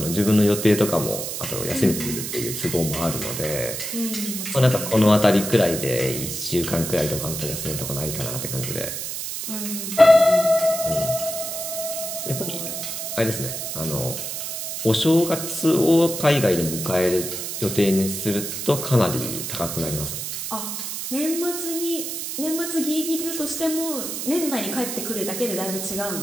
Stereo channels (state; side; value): noise; right; hiss, 5 dB below the sound